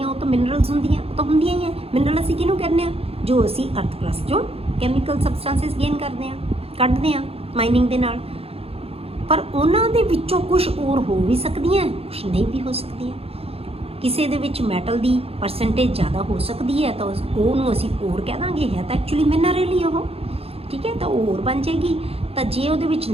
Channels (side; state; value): left; late; 0.28 ms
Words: ਉਹ ਤਾਂ ਮਿਨਰਲਸ ਹੁੰਦੀਆਂ, ਉਹ ਤਾਂ ਹੁੰਦੀਆਂ ਹੀ ਹੈ। ਮਿਨਰਲ ਅਸੀਂ ਕਿਹਨੂੰ ਕਹਿੰਦੇ ਹਾਂ? ਜੋ ਅਸੀਂ ਅਰਥ ਕਰਸਟ ਚੋਂ ਕੈਮੀਕਲ ਸਬਸਟੈਂਸਿਸ ਗੇਨ ਕਰਦੇ ਹਾਂ, ਕੱਢਦੇ ਹਾਂ ਮਾਈਨਿੰਗ ਦੇ ਨਾਲ। ਪਰ ਉਹਨਾਂ ਦੇ ਵਿੱਚੋਂ ਕੁਝ ਓਰ ਹੋ ਵੀ ਸਕਦੀਆਂ, ਕੁਝ ਨਹੀਂ ਵੀ ਹੋ ਸਕਦੀਆਂ। ਕਿਸੇ ਦੇ ਵਿੱਚ ਮੈਟਲ ਦੀ ਪਰਸੈਂਟੇਜ ਜ਼ਿਆਦਾ ਹੋ ਸਕਦੀ ਹੈ ਤਾਂ ਉਹਨੂੰ ਅਸੀਂ ਓਰ ਕਹਿ ਦਾਂਗੇ, ਹੈ ਤਾਂ ਐਕਚੁਅਲੀ ਮਿਨਰਲ ਹੀ ਉਹ। ਠੀਕ ਹੈ, ਤਾਂ ਉਹ ਓਰ ਬਣ ਜਾਏਗੀ। ਤਾਂ ਜੇ ਉਹਦੇ ਵਿੱਚ